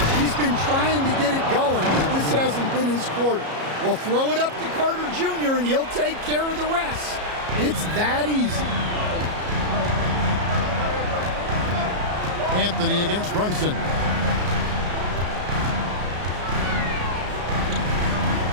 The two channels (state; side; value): late; left; 33 ms